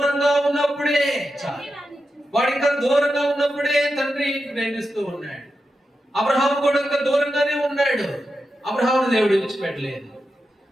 ఉన్నప్పుడే తండ్రి ప్రేమిస్తూ ఉన్నాడు. అబ్రహాము కూడా ఇంకా దూరంగానే ఉన్నాడు. అబ్రహామును దేవుడు విడిచిపెట్టలేదు.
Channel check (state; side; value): normal; both; correlation 0.89